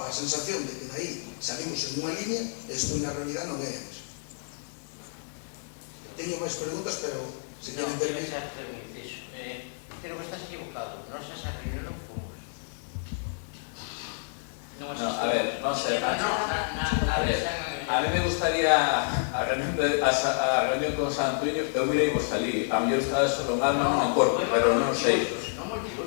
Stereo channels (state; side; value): silent; right; 58 dB below the other